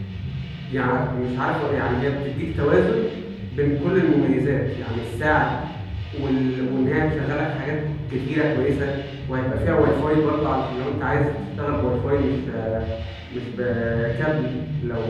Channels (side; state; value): both; identical; correlation 1.00